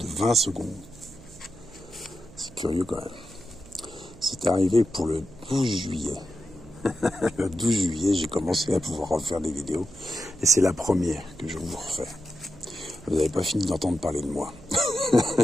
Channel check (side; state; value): right; noise; hum, 21 dB below the sound